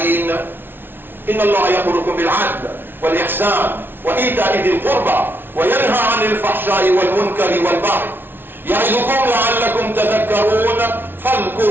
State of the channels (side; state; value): left; late; 0.10 ms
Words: إن الله يأمركم بالعدل والإحسان وإيتاء ذي القربى وينهى عن الفحشاء والمنكر والبغي يعظكم لعلكم تذكرون